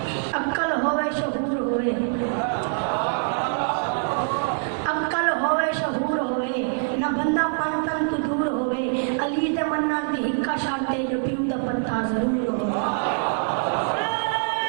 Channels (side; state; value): left; silent; 62 dB below the other